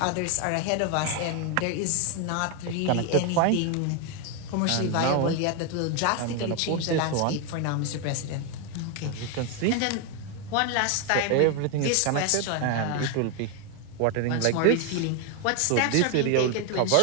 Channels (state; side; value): different; both; correlation 0.01